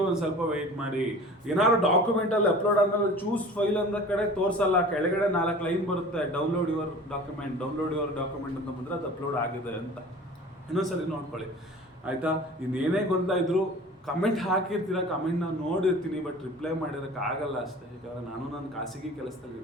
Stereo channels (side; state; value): both; normal; correlation 0.42